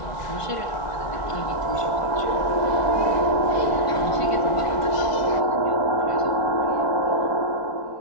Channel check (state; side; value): late; right; 1.5 ms